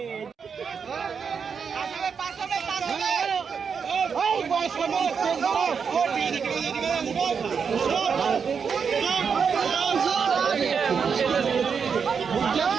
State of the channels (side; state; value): left; quieter; 6.3 dB